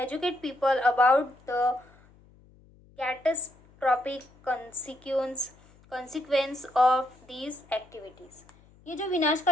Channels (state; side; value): noise; left; hum, 27 dB below the sound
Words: people about the catastrophic consequence of these activities. ये जो